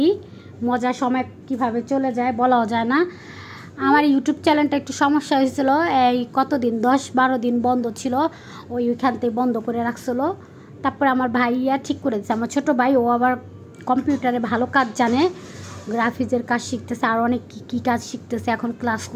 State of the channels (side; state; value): both; identical; correlation 1.00